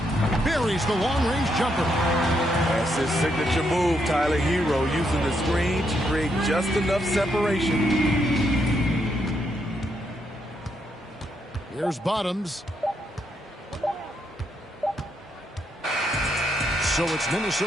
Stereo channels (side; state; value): both; normal; correlation 0.77